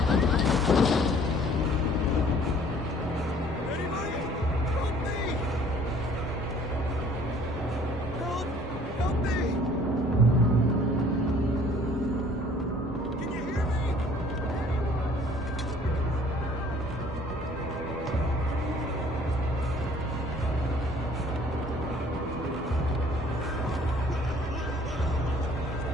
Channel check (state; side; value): normal; both; correlation 0.55